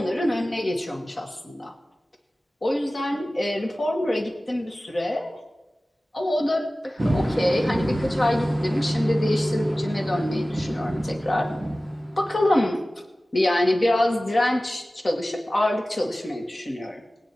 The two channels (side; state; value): both; normal; correlation 0.97